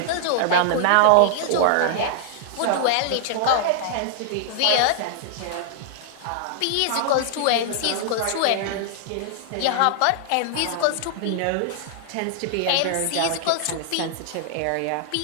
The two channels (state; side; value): different; both; correlation -0.01